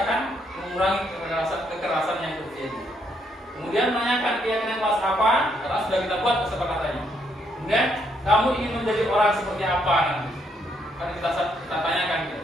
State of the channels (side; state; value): both; normal; correlation 0.73